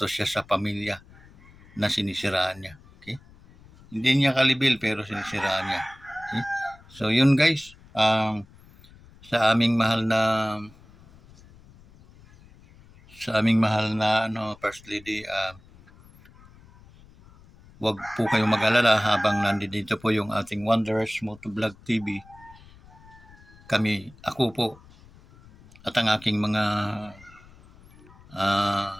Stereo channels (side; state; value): left; noise; rumble, 24 dB below the sound